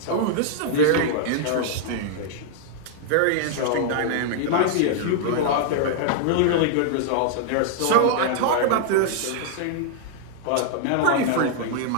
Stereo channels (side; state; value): both; different; correlation -0.01